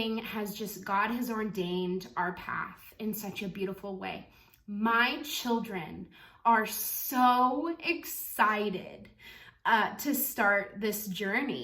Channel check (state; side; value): identical; both; correlation 1.00